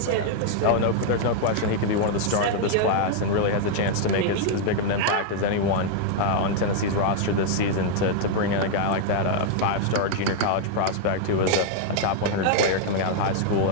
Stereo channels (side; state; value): both; different; correlation -0.01